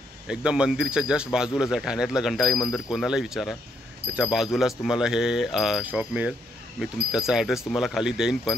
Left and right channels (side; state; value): both; normal; correlation 0.74